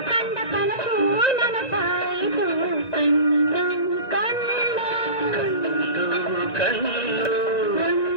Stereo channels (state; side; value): late; right; 1.9 ms